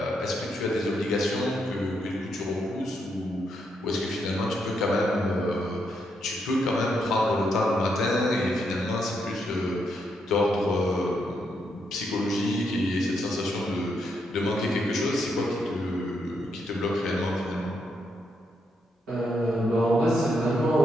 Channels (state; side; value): normal; both; correlation 0.79